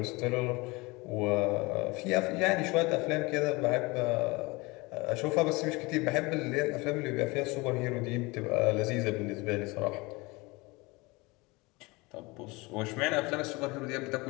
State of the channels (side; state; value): right; quieter; 24.4 dB